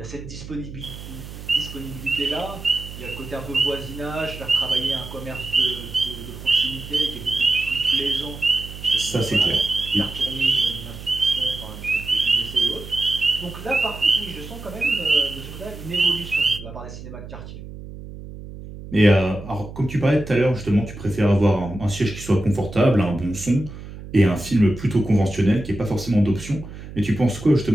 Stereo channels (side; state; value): right; noise; hum, 13 dB below the sound